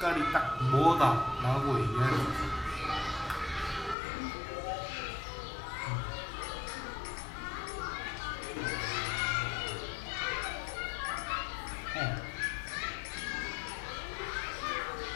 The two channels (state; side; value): drops out; right; at 4.0 s